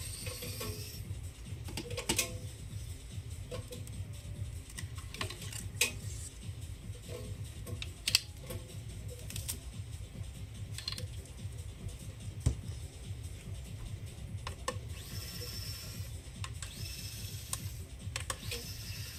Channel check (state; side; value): identical; both; correlation 1.00